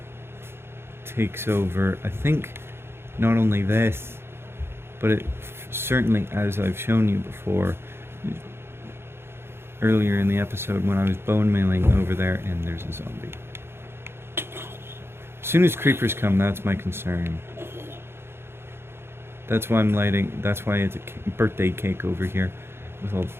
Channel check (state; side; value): late; left; 0.12 ms